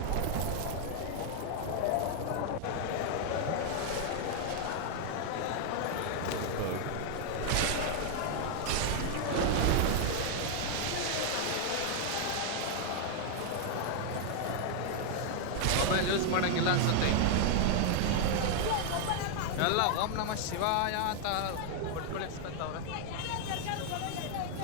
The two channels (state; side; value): different; both; correlation 0.00